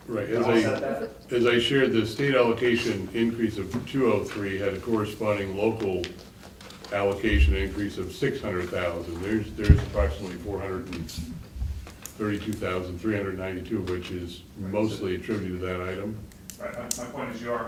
Right, To offset that? as I shared, the state allocation increase of 203 had a corresponding local allocation increase of 600,000. There's approximately 432,392, which is mostly attributed to that item. Right, my point is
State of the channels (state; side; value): identical; both; correlation 1.00